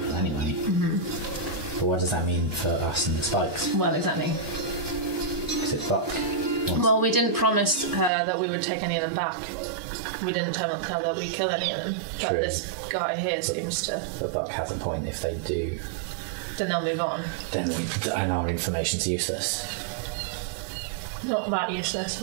anyway. But what does that mean for us and the Spikes? Well, exactly. Is it Buck? Well, we didn't promise her that we would take any of them back. We didn't tell her that we'd kill any of them. But True. this guy here seems to... But Buck has a point. If they do, Then they'll move on. then and our information's useless. Not that useless.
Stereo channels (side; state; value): left; drops out; at 8.1 s